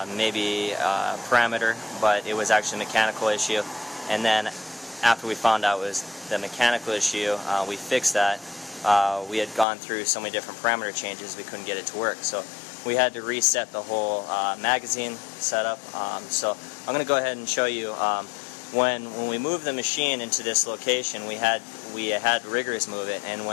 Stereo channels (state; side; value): drops out; right; at 9.7 s